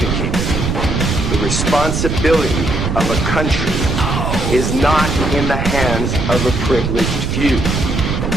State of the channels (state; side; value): noise; right; rumble, 1 dB below the sound